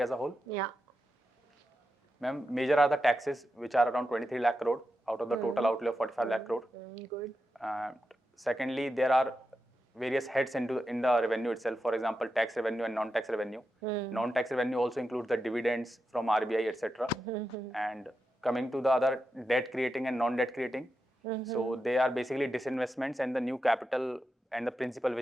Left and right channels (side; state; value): both; normal; correlation 0.88